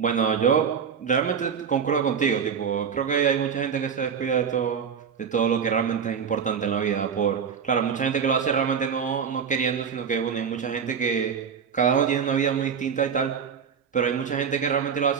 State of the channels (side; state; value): left; quieter; 6.9 dB